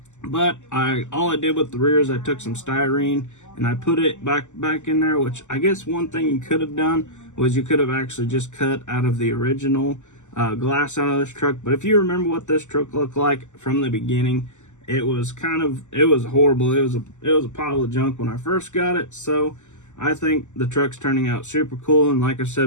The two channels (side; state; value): right; late; 0.84 ms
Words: but all I did with the rear is I took some styrene and I put it back in there. Which I guess one thing you could have done was you could have actually just cut out of the original glass out of this truck. But if you remember what this truck looked like from the beginning, it was horrible. It was a pile of junk when I first got it. So I think the truck's turning out super cool, and like I